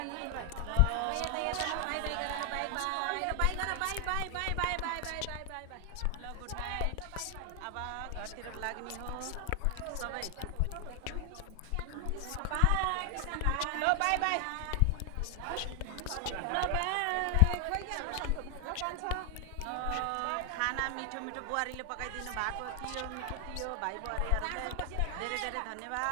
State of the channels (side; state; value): both; different; correlation 0.00